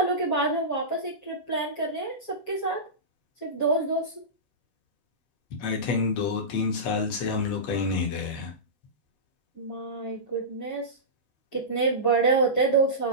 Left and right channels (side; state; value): right; late; 8.3 ms